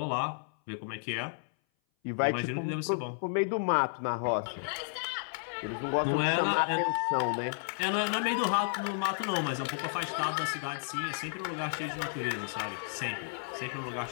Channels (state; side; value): silent; right; 56 dB below the other